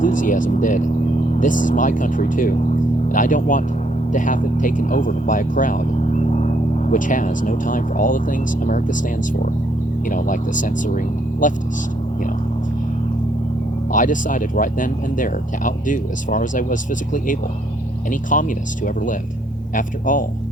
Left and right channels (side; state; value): both; normal; correlation 0.70